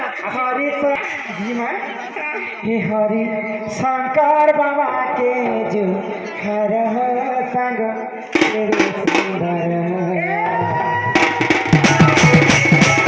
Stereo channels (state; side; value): identical; both; correlation 1.00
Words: हरि जीमा हे हरि शंकर बाबा के जो हर संग तेरे सुंदर